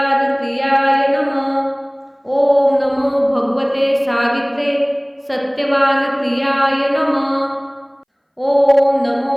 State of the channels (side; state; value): both; identical; correlation 1.00